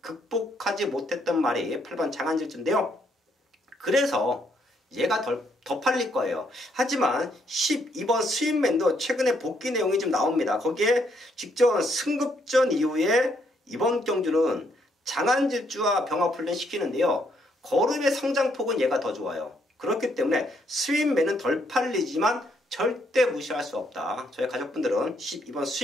극복하지 못했던 말이 8번 장안질주인데요. 그래서 얘가 더 팔릴 거예요. 하지만 12번 스윗맨도 최근에 복귀 내용이 좀 나옵니다. 거기에 직전 승급전 이후에 이번 경주는 장안질주와 병합훈련 시키는데요. 걸음의 성장폭은 얘가 더 좋아요. 그렇기 때문에 스윗맨은 덜 팔리지만 절대 무시할 수 없다. 저희 가족분들은 12번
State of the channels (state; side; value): normal; both; correlation 0.72